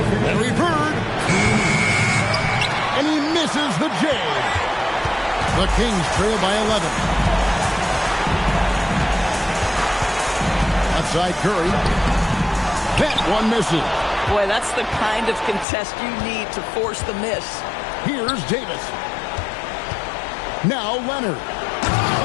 Bird. And he misses the J. The Kings trail by 11. Outside Curry. That one misses. Boy, that's the kind of contest you need to force the miss. Here's Davis. Now Leonard.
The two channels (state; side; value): drops out; right; at 15.7 s